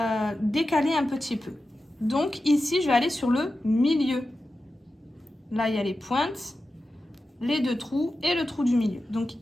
décaler un petit peu. Donc ici, je vais aller sur le milieu. Là, il y a les pointes, les deux trous et le trou du milieu. Donc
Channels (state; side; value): normal; both; correlation 0.92